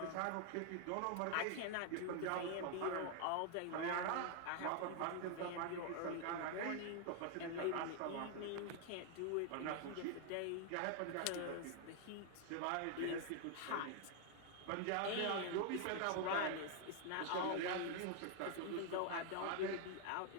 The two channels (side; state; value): both; different; correlation 0.01